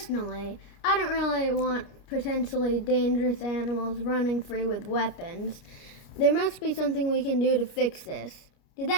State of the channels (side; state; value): right; late; 29 ms